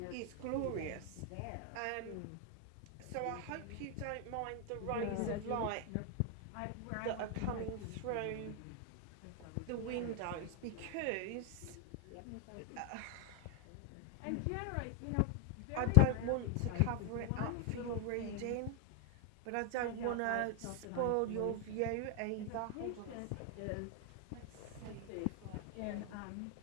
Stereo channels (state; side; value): different; both; correlation 0.01